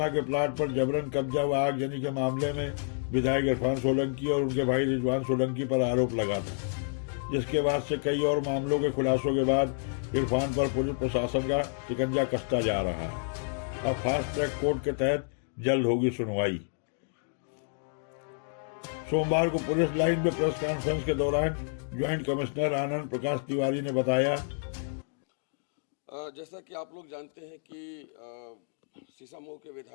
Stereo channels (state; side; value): silent; right; digital silence